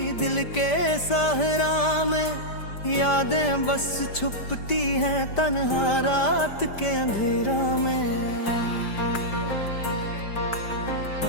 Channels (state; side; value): late; right; 5.1 ms